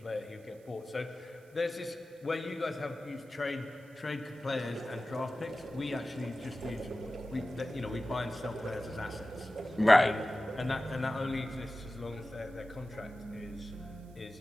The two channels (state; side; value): noise; right; hiss, 30 dB below the sound